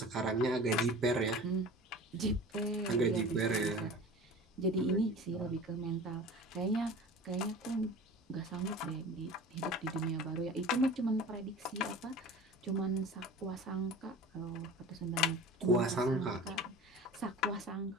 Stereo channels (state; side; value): normal; both; correlation 0.39